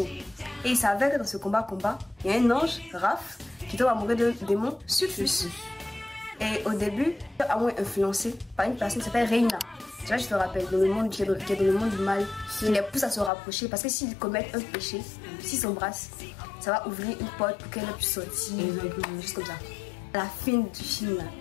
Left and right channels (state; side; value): drops out; right; at 13.3 s